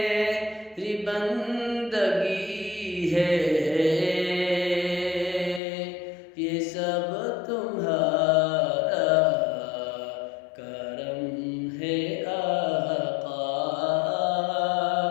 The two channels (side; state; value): right; drops out; at 5.6 s